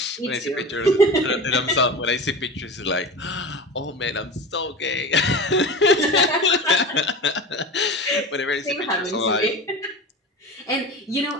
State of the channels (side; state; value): both; normal; correlation 0.30